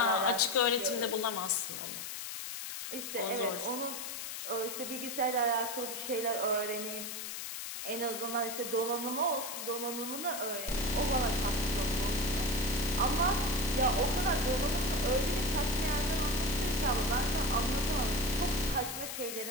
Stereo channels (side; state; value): left; noise; hiss, 6 dB below the sound